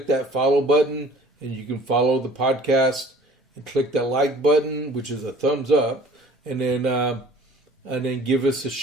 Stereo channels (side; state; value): both; normal; correlation 0.50